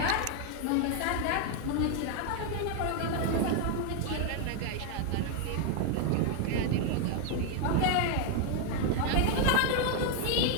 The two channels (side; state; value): both; different; correlation 0.00